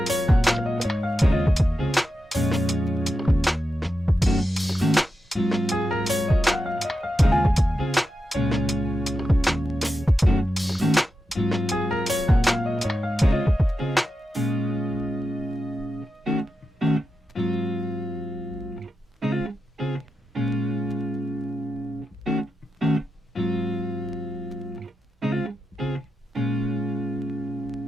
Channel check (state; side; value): normal; both; correlation 0.89